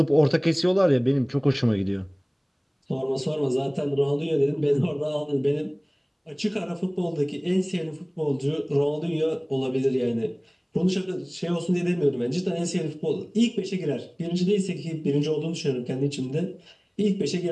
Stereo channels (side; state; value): both; identical; correlation 1.00